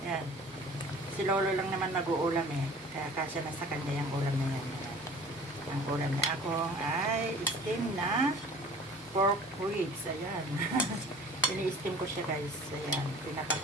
Yan. Si Lolo lang naman mag-uulam eh. Kaya kasya na sa kanya yung ulam na yan. Ang ulam niya akong ay steam na pork ribs. Ayan. Ini-steam ko siya guys. Ayan.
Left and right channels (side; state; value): both; normal; correlation 0.46